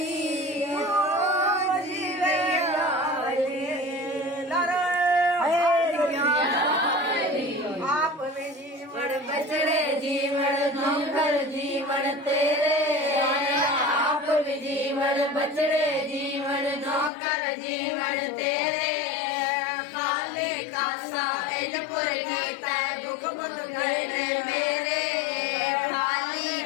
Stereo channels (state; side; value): drops out; right; at 17.1 s